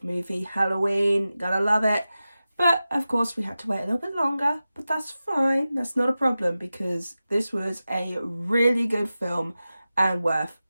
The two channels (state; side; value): inverted; both; correlation -0.94